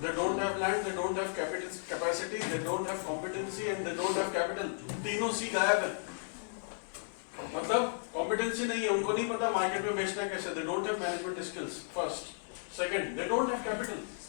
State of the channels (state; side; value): silent; right; digital silence